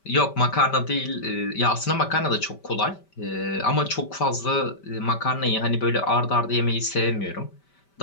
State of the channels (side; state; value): right; late; 5.1 ms